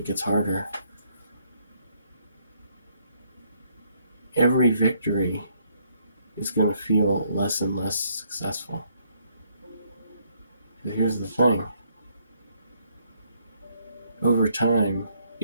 gets harder. Every victory is going to feel less and less successful. But here's the thing. Over time,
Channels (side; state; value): both; inverted; correlation -0.71